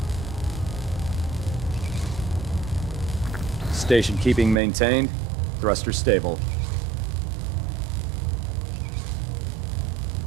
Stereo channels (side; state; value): left; drops out; at 4.5 s